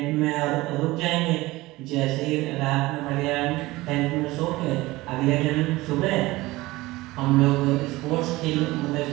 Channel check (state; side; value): quieter; left; 19.6 dB